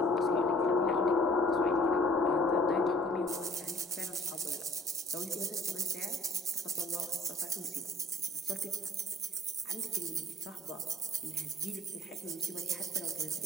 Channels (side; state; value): both; normal; correlation 0.54